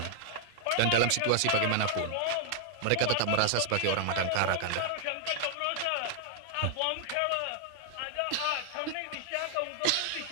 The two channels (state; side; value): different; both; correlation -0.01